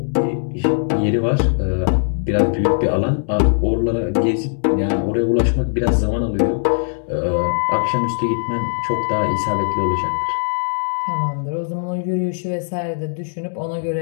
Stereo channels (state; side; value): silent; right; digital silence